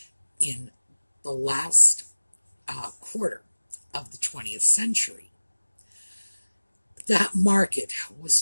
in the last quarter of the 20th century. That market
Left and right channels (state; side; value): inverted; both; correlation -1.00